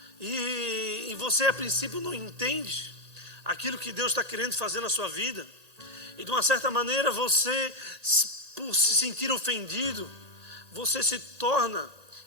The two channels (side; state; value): left; late; 1.8 ms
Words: e você a princípio não entende aquilo que Deus está querendo fazer na sua vida, e de uma certa maneira você, por se sentir ofendido, você se torna